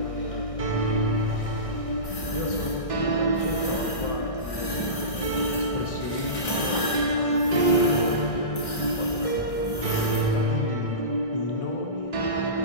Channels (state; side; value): late; right; 1.6 ms